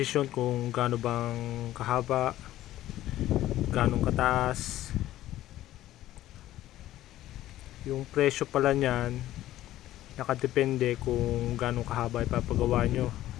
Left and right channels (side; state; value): right; quieter; 14.2 dB